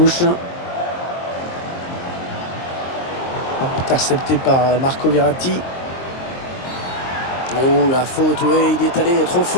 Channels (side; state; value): right; late; 23 ms